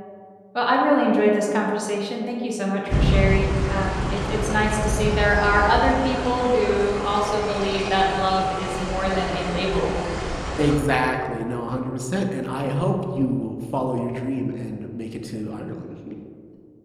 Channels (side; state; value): both; identical; correlation 1.00